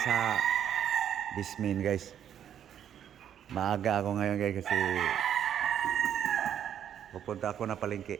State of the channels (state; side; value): quieter; left; 9.6 dB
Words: sa Bismin guys. Maaga ako ngayon guys kasi pupunta ako na palengke.